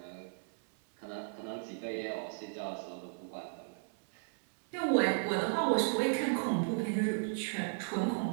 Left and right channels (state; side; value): silent; left; 54 dB below the other